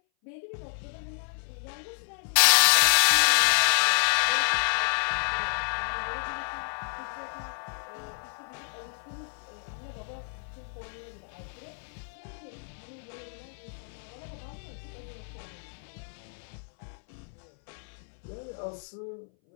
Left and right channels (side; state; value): right; silent; 58 dB below the other